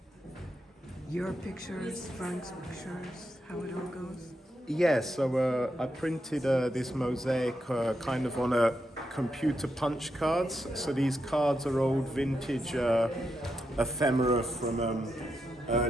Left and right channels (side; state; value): both; normal; correlation 0.84